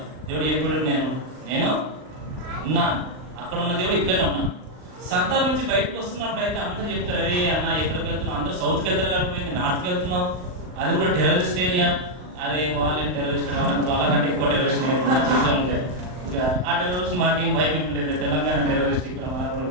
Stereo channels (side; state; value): left; late; 39 ms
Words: దేవుడు ఎప్పుడు నేను ఉన్నాను, అక్కడ ఉన్న దేవుడు ఇక్కడనే ఉన్నాను. సంతాల నుంచి బయటకు వస్తున్నప్పుడు అయితే అందరూ చెప్తారు, అరే అన్న ఎక్కడికి వెళ్తున్నావు, అందరూ సౌత్కి వెళ్తారు కాకపోయింది, నార్త్కి వెళ్తున్నావు, అది కూడా టెర్రరిస్ట్ ఏరియా. అరే వాళ్ళని టెర్రరిస్ట్ వాళ్ళకంటే ఎక్కువ టెర్రరిస్ట్ చెప్తా ఉంటారు. ఇక ఆ టెర్రరిస్ట్ మాకేం భయం ఏం లేదు, తెలంగాణ టెర్రరిస్ట్ ఇక్కడ మన కూడా